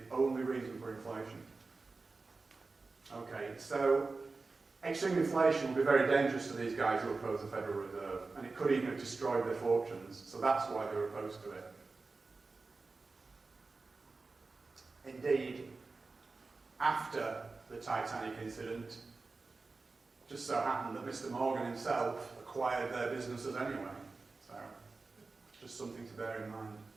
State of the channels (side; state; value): left; quieter; 3.9 dB